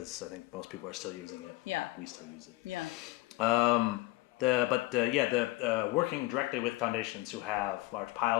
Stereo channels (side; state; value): right; quieter; 19.8 dB